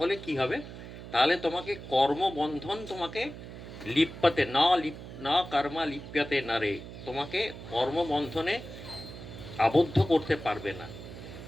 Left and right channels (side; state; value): right; noise; hum, 12 dB below the sound